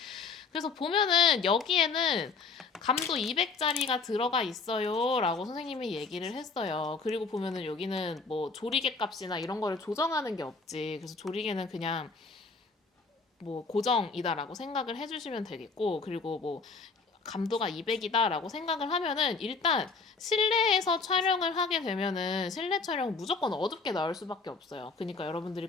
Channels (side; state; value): right; quieter; 4.5 dB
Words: 그래서 보면은 여기에는 감도 200짜리가 들어가 있어요 라고 선생님이 얘기를 했어요. 그리고 보면은 여기는 뭐 조리개 값이나 이런 거를 조정하는 게 없지. 그래서 조리개는 그냥 뭐 고정이다라고 생각을 해주시면 되겠고, 그리고 뭐 감도가 200이다 라고 생각을 하면은 일단 실내에서 촬영을 하게 되면은 실내 촬영은 무조건 어둡게 나올 수밖에 없어요. 그러니까 여러분들이